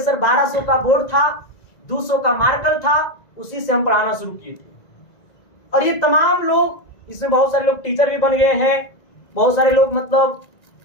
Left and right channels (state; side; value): late; right; 1.9 ms